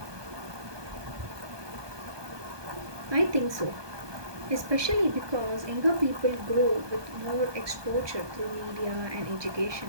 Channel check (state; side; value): late; left; 1.2 ms